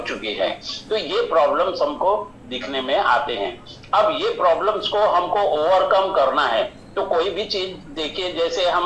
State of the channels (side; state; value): both; identical; correlation 1.00